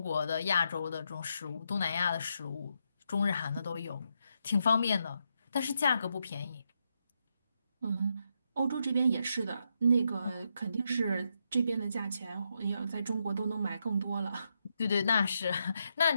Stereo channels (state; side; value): inverted; both; correlation -0.81